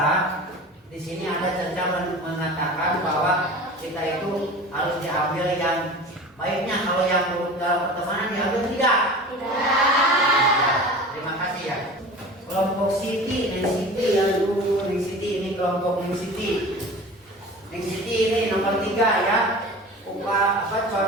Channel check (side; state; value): both; normal; correlation 0.37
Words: di sini ada Caca mengatakan bahwa kita itu harus diambil yang baiknya. Kalau yang buruk dalam pertemanan diambil tidak? Tidak. Terima kasih ya. Kelompok Siti, Neng Siti yang dulu Neng Siti ini kelompok Neng Siti. Neng Siti ini nomor 3 ya.